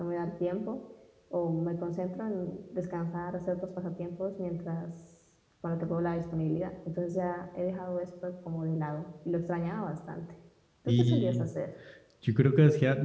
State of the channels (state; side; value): identical; both; correlation 1.00